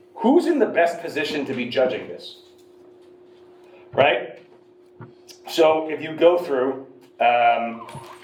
who's in the best position to be judging this? Right? So if you go through,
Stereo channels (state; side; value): identical; both; correlation 1.00